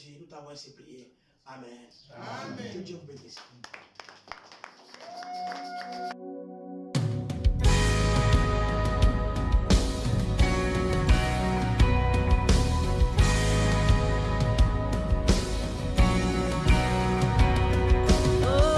nous t'avons ainsi prié. Amen. Amen. Que Dieu vous bénisse.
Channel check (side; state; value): both; identical; correlation 1.00